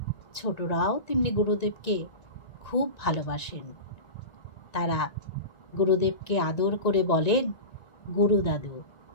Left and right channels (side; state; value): right; late; 1.9 ms